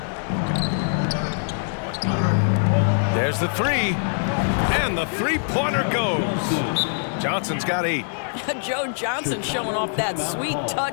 There's the three. And the three-pointer goes. Johnson's got 8. Joe Johnson showing off that sweet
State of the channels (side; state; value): right; silent; 58 dB below the other